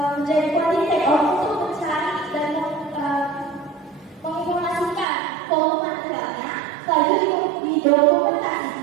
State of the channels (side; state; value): left; drops out; at 5.1 s